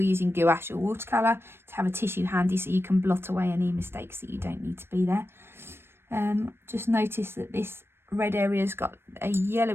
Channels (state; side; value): late; left; 0.12 ms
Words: gouache or watercolour, to have a tissue handy so you can blot away any mistakes that you don't need to be there. Just notice that this red area's got a